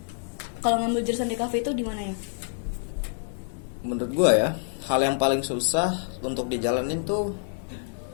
kalau ngambil jurusan DKV itu di mana ya? Menurut gua ya, hal yang paling susah untuk dijalanin tuh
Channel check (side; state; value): right; silent; digital silence